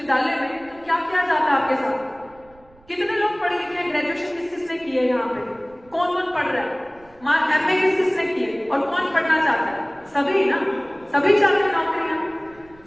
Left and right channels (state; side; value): noise; right; rumble, 28 dB below the sound